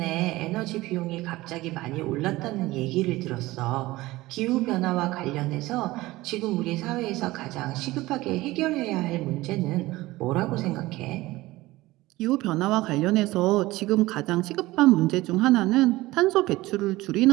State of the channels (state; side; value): quieter; left; 18.8 dB